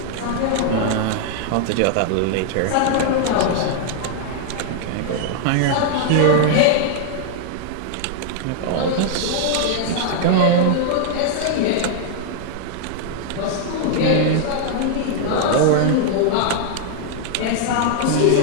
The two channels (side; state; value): both; different; correlation 0.00